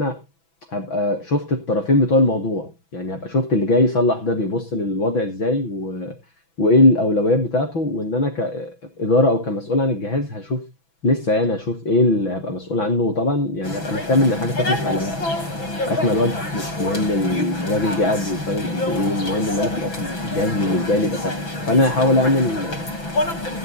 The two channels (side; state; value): right; late; 6.0 ms